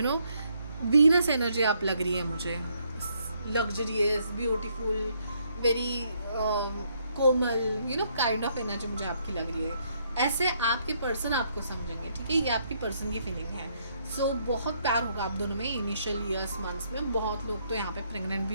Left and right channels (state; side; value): inverted; both; correlation -0.72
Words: वीनस एनर्जी आप लग रही है मुझे, luxurious, beautiful, very Komal, kind of energy मुझे आपकी लग रही है। ऐसे आपके पर्सन आपको समझेंगे, ठीक है। ये आपकी पर्सन की फीलिंग है। सो बहुत प्यार होगा आप दोनों में इनिशियल ईयर्स, मंथ्स में। बहुत लोग तो यहाँ पे प्रेग्नेंट